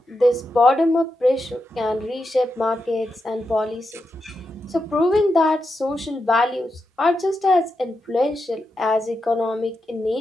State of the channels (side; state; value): both; normal; correlation 0.86